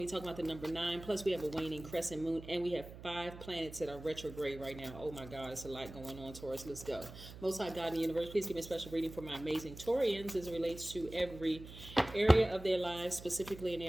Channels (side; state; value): right; noise; hum, 14 dB below the sound